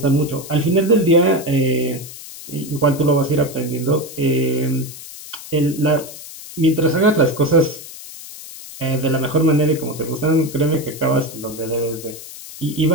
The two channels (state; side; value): noise; left; hiss, 14 dB below the sound